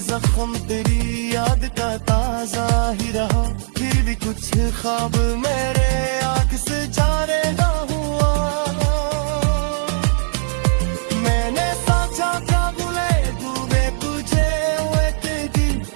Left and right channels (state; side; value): silent; left; digital silence